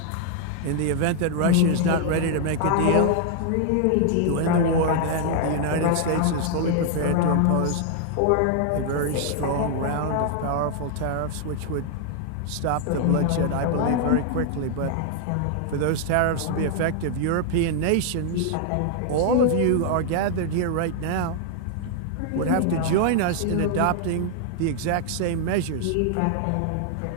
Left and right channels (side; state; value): both; different; correlation 0.00